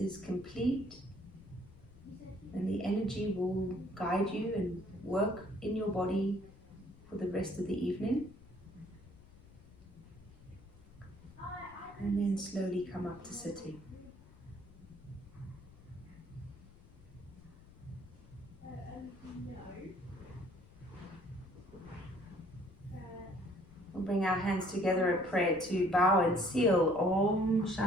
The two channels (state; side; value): noise; left; rumble, 22 dB below the sound